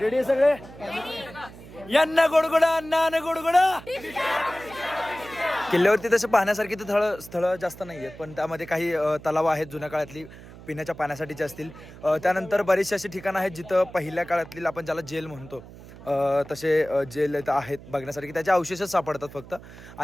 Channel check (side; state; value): right; noise; hum, 17 dB below the sound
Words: रेडी सगळे? यांना गोडगोडा अण्णा गोडगोडा. किल्ल्यावरती तसं पाहण्यासारखी तर स्थळं जास्त नाही आहेत, पण त्यामध्ये काही तलाव आहेत जुन्या काळातली पिण्याच्या पाण्यासाठीचे असतील. त्यानंतर बरीचशी अशी ठिकाणं आहेत जिथं पहिल्या काळातली आपण ज्याला जेल म्हणतो तसे जेल इथं आहेत बघण्यासारखी. त्याचे अवशेषच सापडतात फक्त.